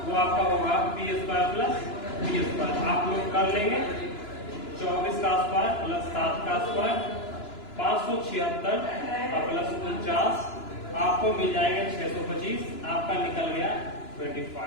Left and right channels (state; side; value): late; right; 2.9 ms